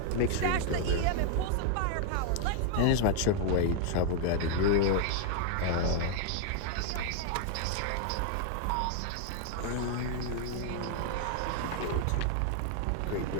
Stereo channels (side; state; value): both; different; correlation 0.00